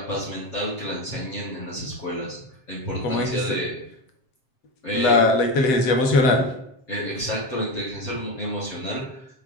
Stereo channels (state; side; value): late; right; 7.6 ms